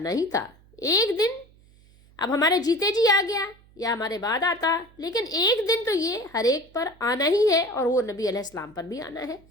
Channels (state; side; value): noise; right; hum, 28 dB below the sound